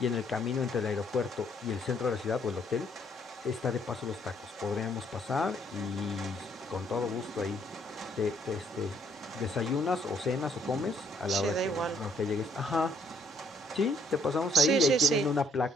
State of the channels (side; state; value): both; normal; correlation 0.67